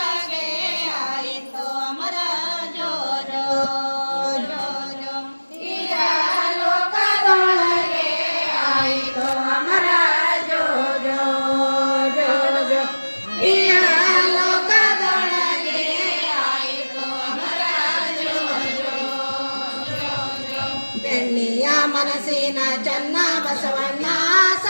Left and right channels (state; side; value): inverted; both; correlation -1.00